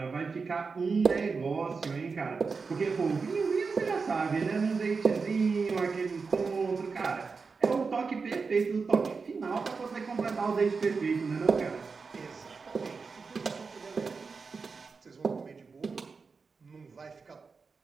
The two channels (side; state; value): left; quieter; 4.8 dB